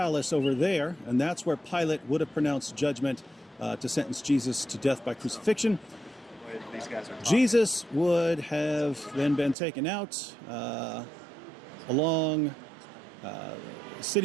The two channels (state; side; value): drops out; left; at 9.6 s